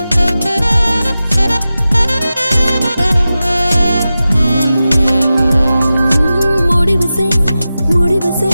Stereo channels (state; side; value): inverted; both; correlation -0.94